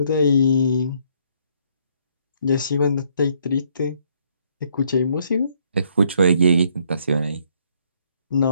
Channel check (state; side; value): inverted; both; correlation -0.68